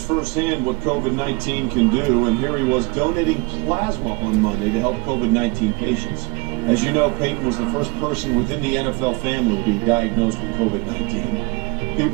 firsthand what COVID-19 can do, and here he was donating plasma on Monday to help COVID-19 patients. As you know, Payton was the first person within the NFL family to be diagnosed with COVID-19.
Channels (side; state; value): left; quieter; 27.3 dB